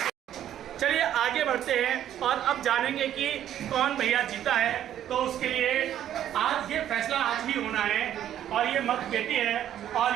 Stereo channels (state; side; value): quieter; left; 11.0 dB